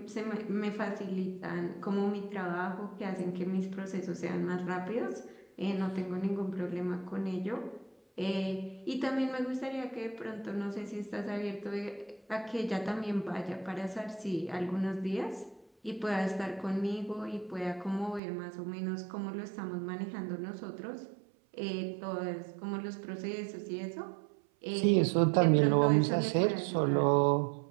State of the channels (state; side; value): drops out; left; at 18.2 s